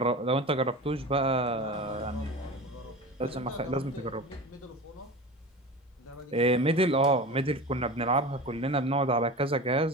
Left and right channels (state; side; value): normal; both; correlation 0.31